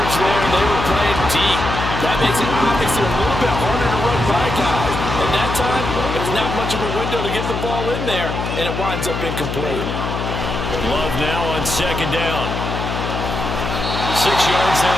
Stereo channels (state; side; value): noise; left; hum, 4 dB below the sound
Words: there. They were playing deep. That makes it obviously a little bit harder to run by guys. And that time, there's not much of a window to get the ball in there, and it winds up incomplete. Love now on 2nd down. 6 yards